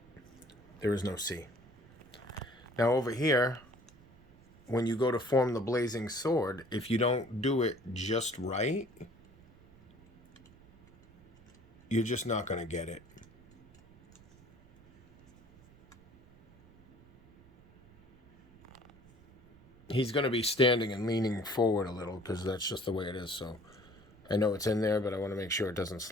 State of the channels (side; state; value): right; noise; rumble, 25 dB below the sound